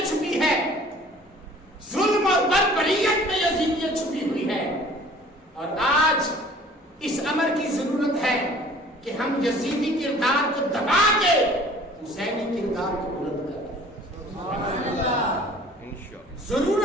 چھپی ہے، ظلم اور بربریت میں یزیدیت چھپی ہوئی ہے۔ اور آج اس امر کی ضرورت ہے کہ ہم یزیدی کردار کو دبا کے حسینی کردار کو بلند کریں۔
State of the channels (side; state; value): both; normal; correlation 0.50